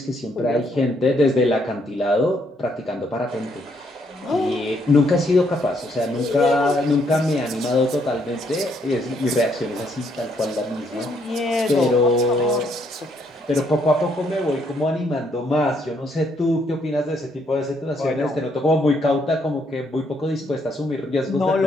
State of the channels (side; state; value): both; normal; correlation 0.71